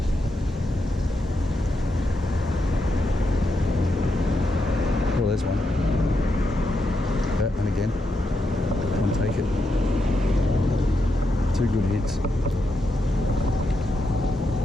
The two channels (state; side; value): normal; both; correlation 0.83